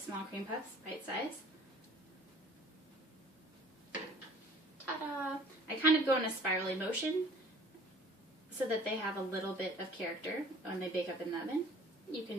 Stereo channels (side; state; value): both; normal; correlation 0.51